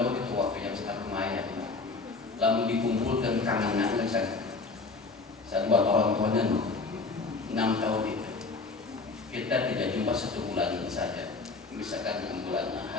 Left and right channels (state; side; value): quieter; right; 4.0 dB